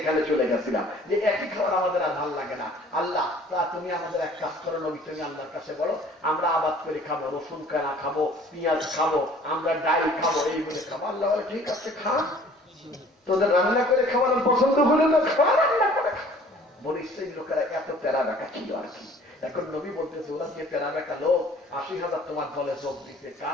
এখানে চলে গেছিলাম, যে একই খাবার আমাদের আর ভালো লাগে না। আল্লাহ তা তুমি আমাদের এক কাজ করো নবী, তুমি আল্লাহর কাছে বলো আমরা আবাদ করে খাবো, রসুন কানা খাবো, পেঁয়াজ খাবো, আমরা ডাল খাবো, এই বলে খাবো। আল্লাহ বলে ঠিক আছে খা, তোদের রান্না করে খাওয়ানোর পছন্দ হলে তো খাওয়া, রান্না করে খা। বলে সেই লোকেরা এত প্যারা বেকা ছিল আর কি। এখন নবী বলতেছে ওরা যে প্যারা বেকা লোক 80,000 তোমার দলে যোগ দিতে,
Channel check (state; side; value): normal; both; correlation 0.52